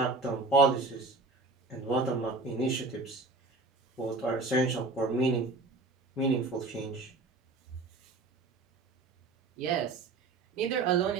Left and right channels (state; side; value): quieter; left; 3.6 dB